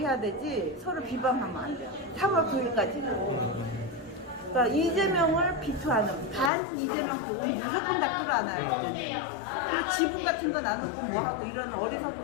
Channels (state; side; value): drops out; right; at 6.5 s